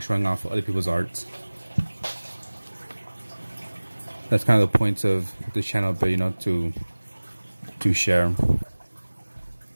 showing off other people's arts. That's kind of the point of this channel, but to share.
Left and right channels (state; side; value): inverted; both; correlation -1.00